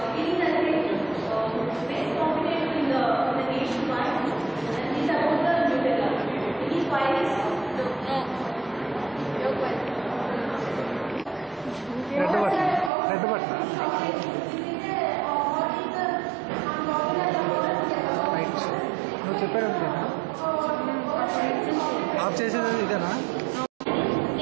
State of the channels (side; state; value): left; drops out; at 12.9 s